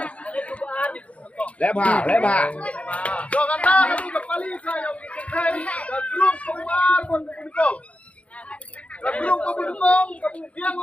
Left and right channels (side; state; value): right; late; 0.064 ms